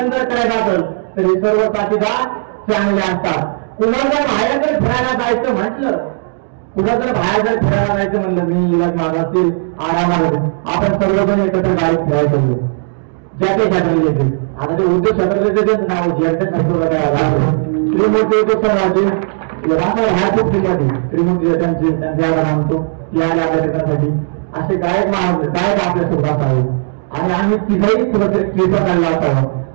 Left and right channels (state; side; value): silent; left; 59 dB below the other